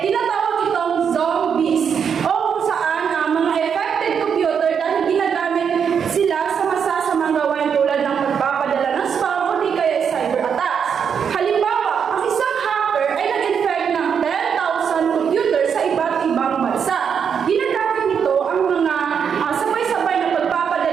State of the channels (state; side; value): quieter; left; 7.2 dB